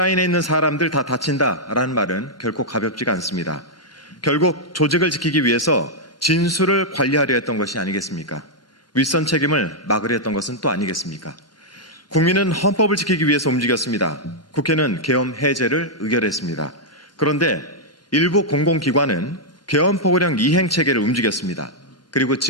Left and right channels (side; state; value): both; normal; correlation -0.05